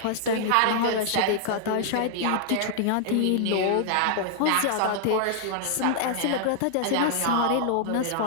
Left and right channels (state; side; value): different; both; correlation -0.01